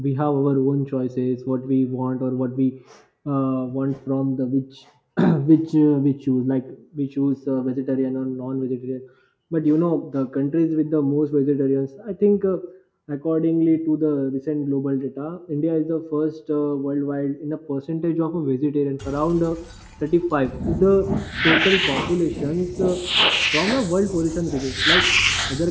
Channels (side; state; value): both; identical; correlation 1.00